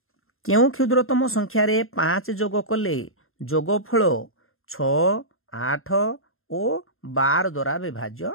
केउ क्षुद्रतम संख्या रे 5 जोग कले जोगफल 6 8 और 12 द्वारा विभाज्य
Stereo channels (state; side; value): late; right; 0.61 ms